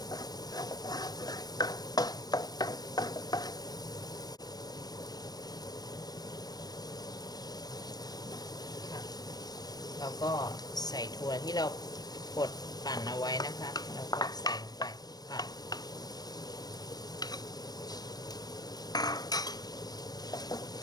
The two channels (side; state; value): right; late; 0.19 ms